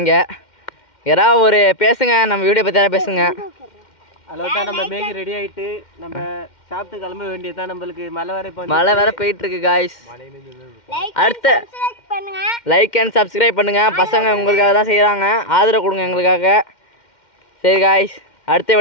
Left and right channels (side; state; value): right; late; 2.1 ms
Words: இங்கே. யாராவது ஒரு பேசுங்க, நம்ம வீடியோ பற்றி யாராவது பேசுங்க. அவ்வளோதான், நம்ம மேகி ரெடி ஆகிட்டு நம்ம சாப்பிட்டு கிளம்ப வேண்டியதுதான். நம்மளுக்கு மழை வர இப்போ மழை வேற போயிட்டு இருக்கு காய்ஸ். அடுத்து லைக் அண்ட் சப்ஸ்கிரைப் பண்ணுங்க. பசங்க உங்களுக்காக தான் செய்கிறாங்க, ஆதரவு கொடுங்க எங்களுக்காக. சரி காய்ஸ், அடுத்த